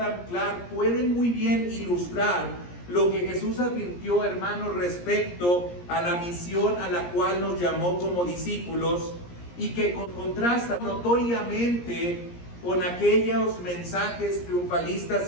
Clarke pueden muy bien ilustrar lo que Jesús advirtió, hermanos, respecto a la misión a la cual nos llamó como discípulos y que contrasta notoriamente con aquellos mensajes triunfalistas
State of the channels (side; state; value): right; late; 17 ms